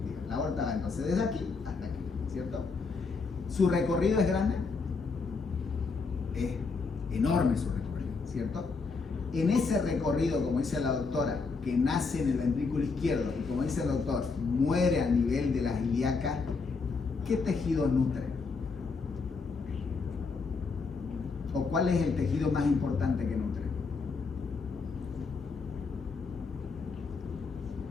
La aorta va entonces desde aquí hasta aquí, ¿cierto? Su recorrido es grande, es enorme su recorrido, ¿cierto? En ese recorrido, como dice la doctora, que nace en el ventrículo izquierdo y como dice el doctor, muere a nivel de las ilíacas, ¿qué tejido nutre? ¿O cuál es el tejido más importante que nutre?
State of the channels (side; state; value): right; quieter; 4.5 dB